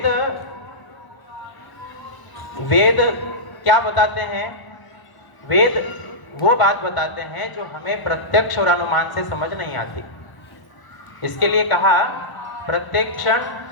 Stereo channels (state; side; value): late; right; 1.0 ms